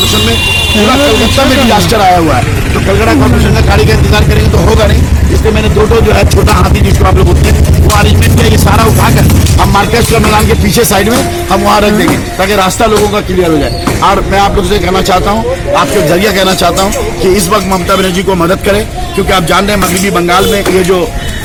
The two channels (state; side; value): identical; both; correlation 1.00